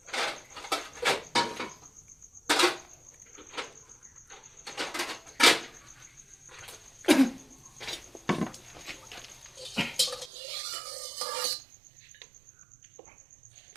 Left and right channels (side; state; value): left; drops out; at 10.3 s